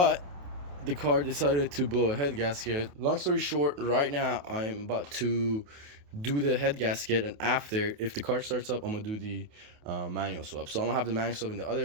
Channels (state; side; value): late; left; 28 ms